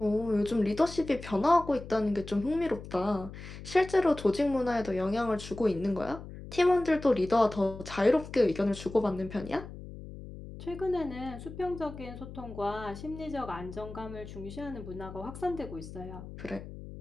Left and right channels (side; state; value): left; noise; hum, 13 dB below the sound